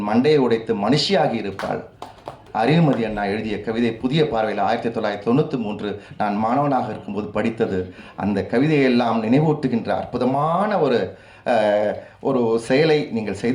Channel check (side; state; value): both; identical; correlation 1.00